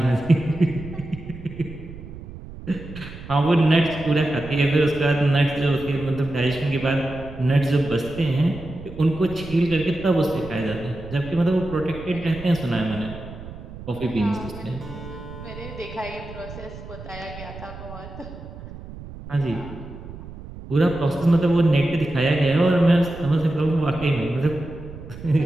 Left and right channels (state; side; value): noise; right; rumble, 14 dB below the sound